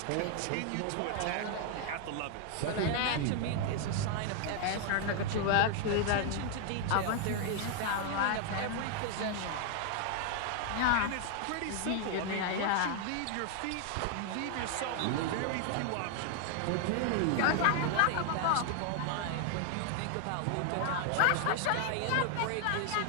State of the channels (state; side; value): different; both; correlation 0.00